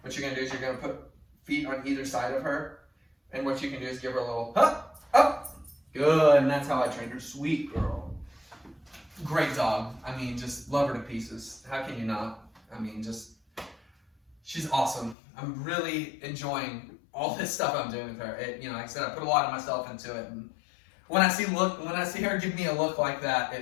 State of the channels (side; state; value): right; drops out; at 15.2 s